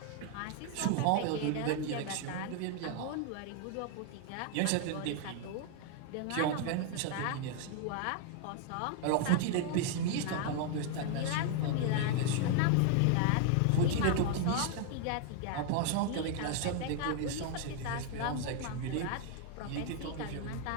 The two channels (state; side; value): different; both; correlation 0.00